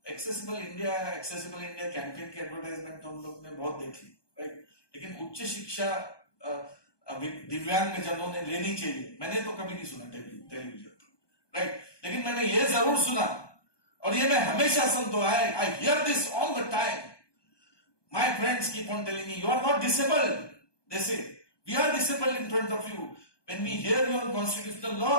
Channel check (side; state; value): right; late; 1.2 ms